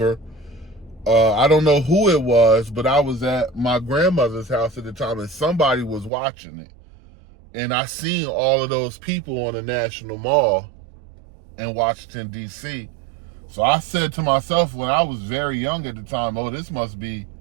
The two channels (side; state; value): left; drops out; at 6.1 s